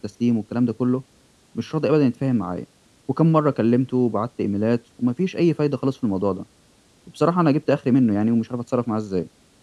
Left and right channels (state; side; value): identical; both; correlation 1.00